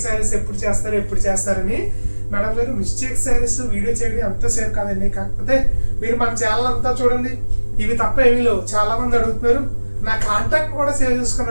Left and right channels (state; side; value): inverted; both; correlation -1.00